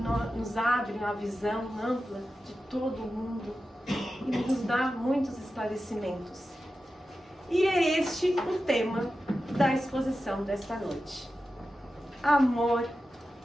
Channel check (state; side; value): normal; both; correlation 0.92